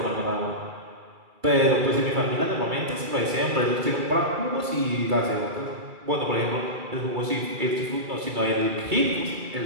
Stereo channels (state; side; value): late; left; 2.3 ms